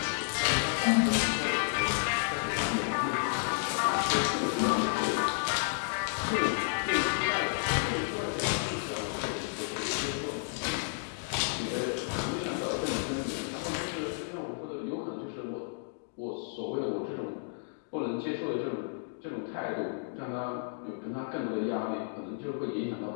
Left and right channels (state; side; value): silent; right; digital silence